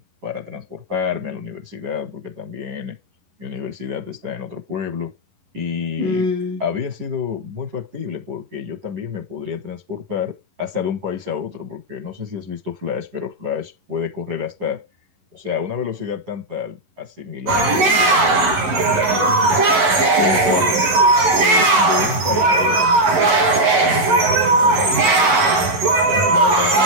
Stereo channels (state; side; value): late; left; 11 ms